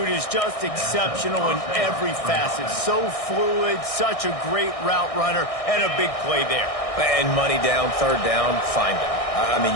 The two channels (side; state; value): right; late; 1.6 ms